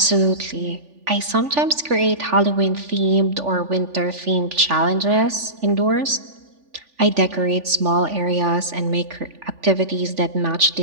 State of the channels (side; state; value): left; late; 3.5 ms